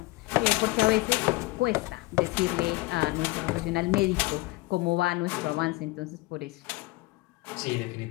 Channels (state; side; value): quieter; right; 21.6 dB